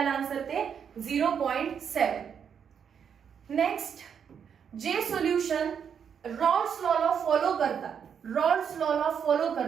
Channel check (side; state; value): left; quieter; 7.5 dB